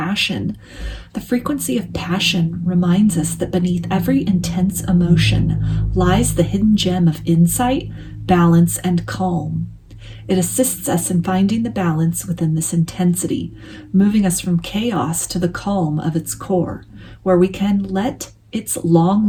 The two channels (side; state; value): both; identical; correlation 1.00